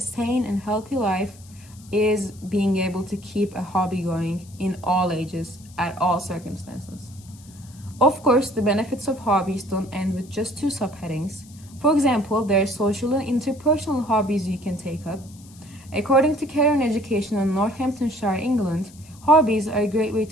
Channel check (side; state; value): left; noise; hiss, 24 dB below the sound